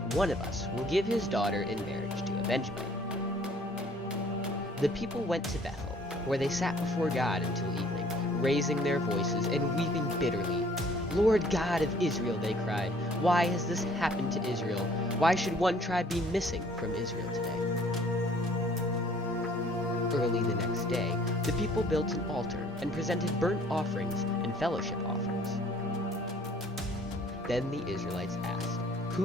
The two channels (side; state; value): both; normal; correlation 0.57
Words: one of us will give his daughter in marriage to a Benjamite. The people went to Bethel, where they sat before God until evening, raising their voices and weeping bitterly. "Lord God of Israel," they cried, "why has this happened to Israel? Why should one tribe be missing from Israel today?" Early the next day, the people built an altar and presented burnt offerings and fellowship offerings. Then the Israelites asked,